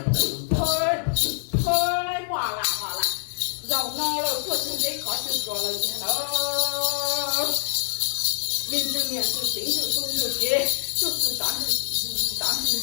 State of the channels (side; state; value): right; silent; 62 dB below the other